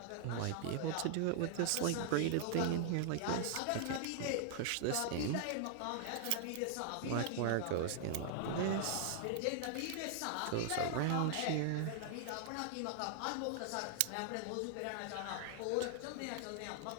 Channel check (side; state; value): both; different; correlation 0.00